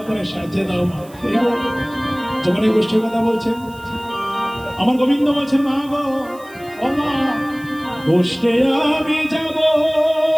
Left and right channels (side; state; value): right; noise; hiss, 24 dB below the sound